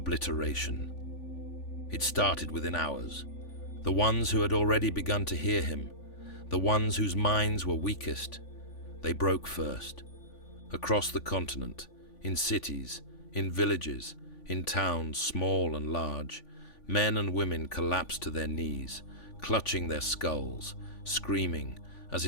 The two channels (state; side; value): late; right; 3.5 ms